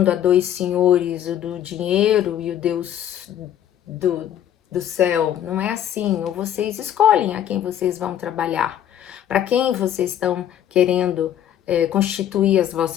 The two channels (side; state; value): right; quieter; 10.6 dB